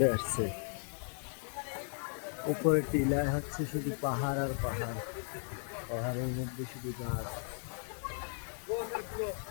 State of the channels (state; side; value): silent; right; 54 dB below the other